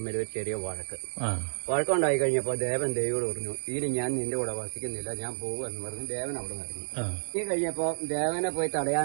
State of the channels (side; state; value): left; silent; 58 dB below the other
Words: ഒരു ചെറിയ വഴക്കുണ്ടായി കഴിഞ്ഞപ്പോ ദേവൻ ദേവിയോട് പറഞ്ഞു, ഇനി ഞാൻ നിന്റെ കൂടെ വസിക്കുന്നില്ല, ഞാൻ പോകുമെന്ന് പറഞ്ഞു ദേവൻ അവിടെ നിന്ന് ഇറങ്ങി. ഈ കഴിഞ്ഞപ്പോ ദേവനെ പോയി